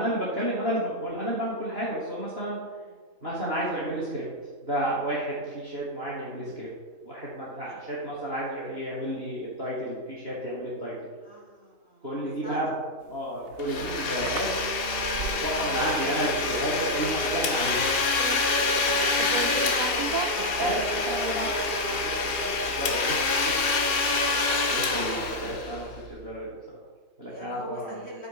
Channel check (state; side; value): late; left; 2.8 ms